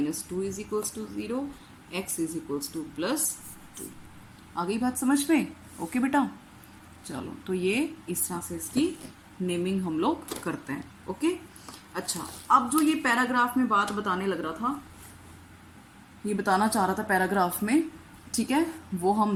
is equals to 0, x is equals to +2। आ गई बात समझ में? ओके बेटा, चलो, तो ये इस तरह से इसकी नेमिंग हम लोग करते हैं, ओके। अच्छा, अब जो ये पैराग्राफ में बात बताने लग रहा था, ये बताना चाह रहा था पैराग्राफ में, ठीक है, वो हम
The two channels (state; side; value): identical; both; correlation 1.00